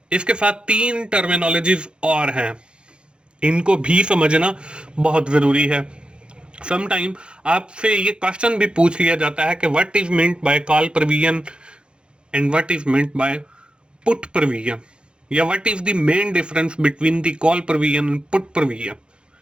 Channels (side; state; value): left; late; 0.054 ms